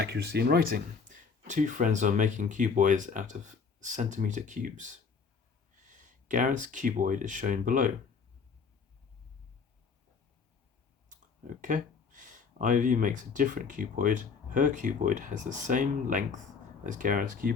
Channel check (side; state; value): right; quieter; 5.4 dB